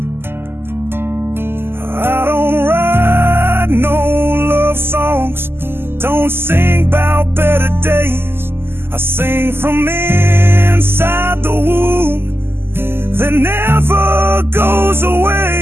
Don't sing about better days, I sing from inside the womb that never goes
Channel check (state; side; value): late; left; 0.11 ms